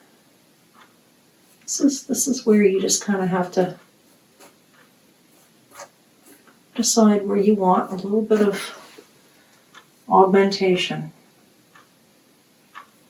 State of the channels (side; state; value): both; identical; correlation 1.00